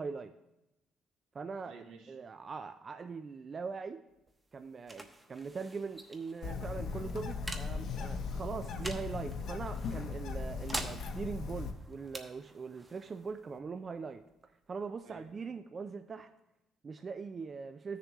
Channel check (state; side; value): normal; both; correlation 0.76